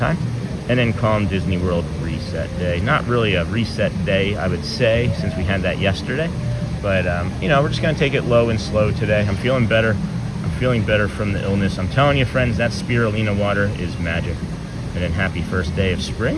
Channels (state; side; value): identical; both; correlation 1.00